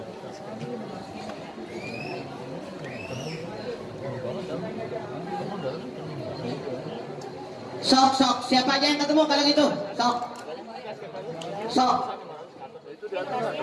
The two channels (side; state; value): both; identical; correlation 1.00